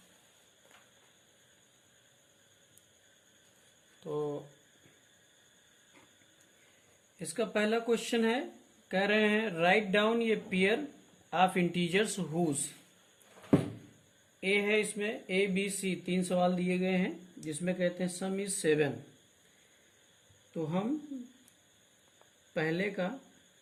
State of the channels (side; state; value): both; identical; correlation 1.00